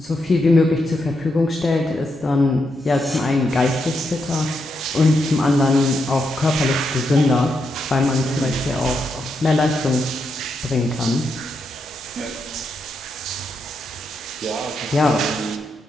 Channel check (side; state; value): both; normal; correlation 0.82